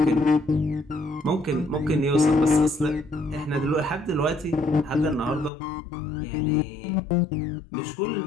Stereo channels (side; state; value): right; drops out; at 5.5 s